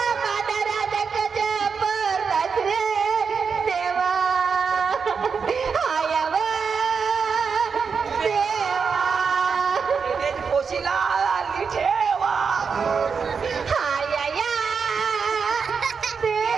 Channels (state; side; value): quieter; left; 5.8 dB